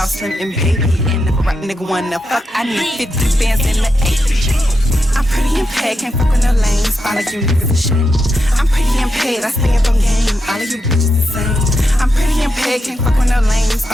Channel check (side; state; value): both; normal; correlation 0.85